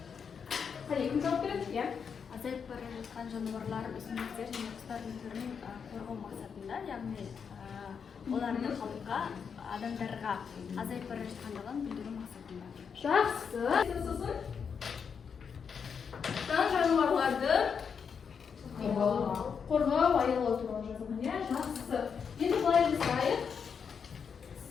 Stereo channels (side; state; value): right; quieter; 6.5 dB